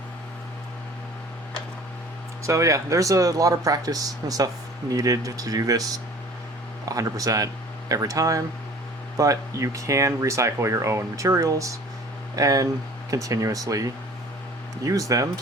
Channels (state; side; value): normal; both; correlation 0.47